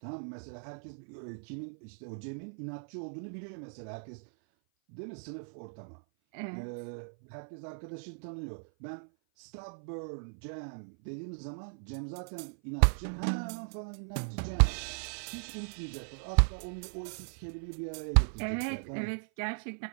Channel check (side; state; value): left; silent; 53 dB below the other